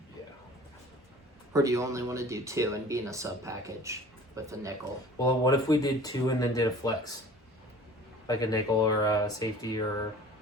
Yeah. Or do you only want to do 2 and be in a sub package with a nickel? Well, what if we did 2 and then did a flex, like a nickel or a safety or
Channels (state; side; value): normal; both; correlation 0.45